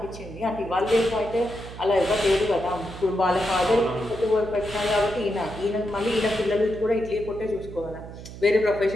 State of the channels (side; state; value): right; noise; hum, 13 dB below the sound